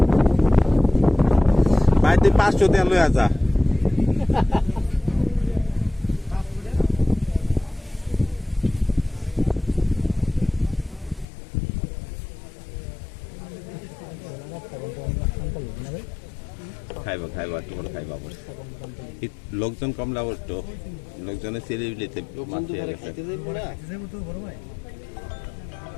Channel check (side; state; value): right; drops out; at 11.2 s